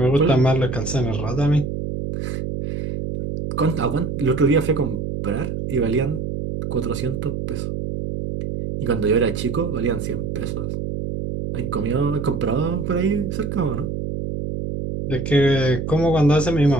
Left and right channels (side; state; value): right; noise; hum, 4 dB below the sound